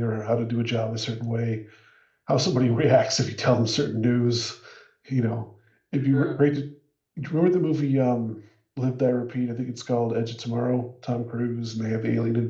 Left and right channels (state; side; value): identical; both; correlation 1.00